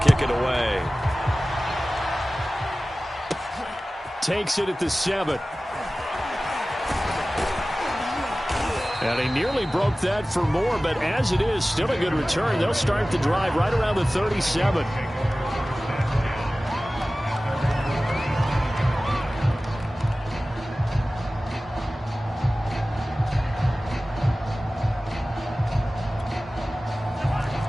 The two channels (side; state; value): both; normal; correlation 0.97